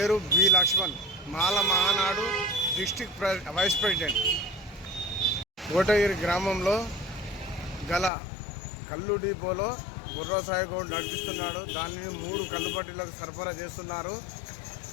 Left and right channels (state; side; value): drops out; right; at 8.1 s